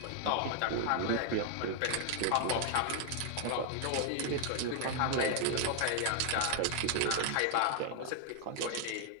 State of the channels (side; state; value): both; different; correlation 0.00